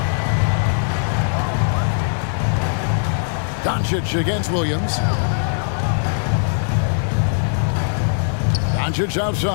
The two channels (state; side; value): silent; right; digital silence